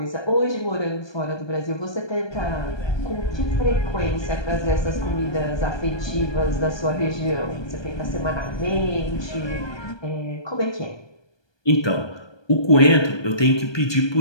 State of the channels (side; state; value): right; late; 1.2 ms